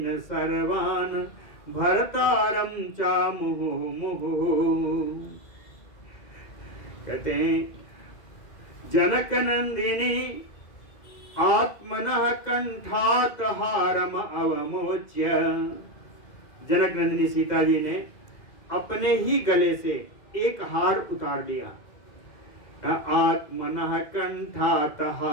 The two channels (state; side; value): late; right; 2.0 ms